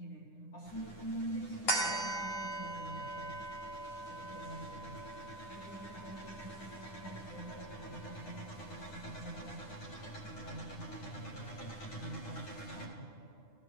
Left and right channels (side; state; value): right; late; 9.9 ms